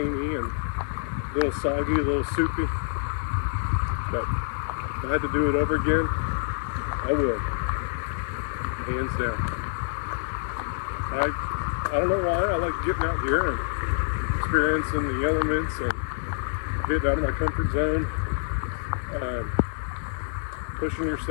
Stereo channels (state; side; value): silent; right; digital silence